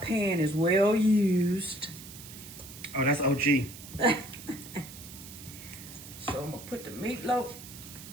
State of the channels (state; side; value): noise; right; hiss, 15 dB below the sound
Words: is well used. Oh, that's OG. So I'm gonna put the meatloaf